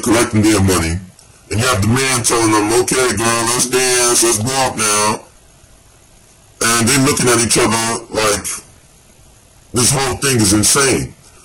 collecting their money, and you have the man telling them, okay girl, let's dance, let's walk now. And they're looking at each other like this whole thing is insane.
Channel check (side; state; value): both; identical; correlation 1.00